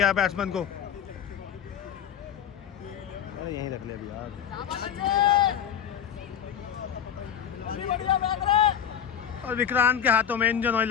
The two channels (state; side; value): quieter; right; 8.9 dB